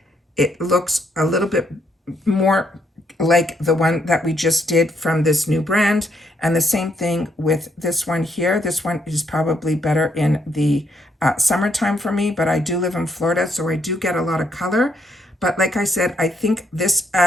it looks a little bit more like the one that we just did from this new brand. And the same thing with this one here. This one is probably better in the summertime for me, but I do live in Florida, so I do get a lot of color. But like I said, I think this,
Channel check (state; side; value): normal; both; correlation 0.73